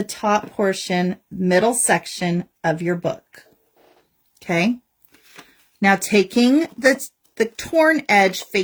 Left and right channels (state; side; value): identical; both; correlation 1.00